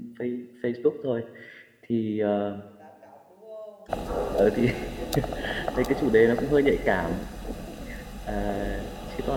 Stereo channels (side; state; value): both; identical; correlation 1.00